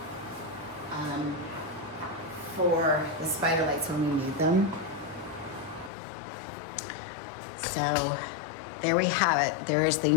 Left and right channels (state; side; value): drops out; right; at 5.9 s